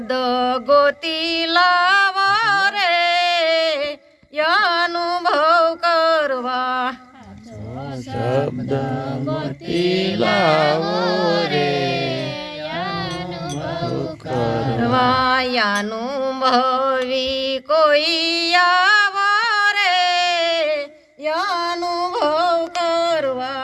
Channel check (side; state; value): both; identical; correlation 1.00